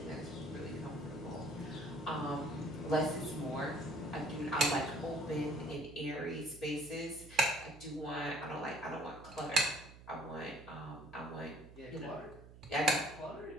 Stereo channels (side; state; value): right; noise; hum, 18 dB below the sound